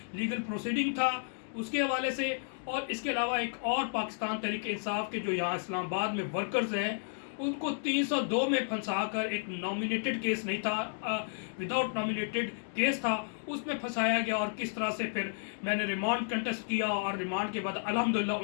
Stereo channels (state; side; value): silent; right; digital silence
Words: لیگل پروسیڈنگ تھا اس کے حوالے سے، اور اس کے علاوہ ایک اور پاکستان تحریک انصاف کے جو یہاں اسلام آباد میں ورکرز ہیں ان کو 302 میں پھنسا کر، ایک نامینیٹڈ کیس نہیں تھا، وداؤٹ نامینیٹڈ کیس تھا، اس میں پھنسایا گیا، اور کس طرح سے پھر میں نے ریمانڈ کنٹیسٹ کیا اور ریمانڈ کے بعد الحمدللہ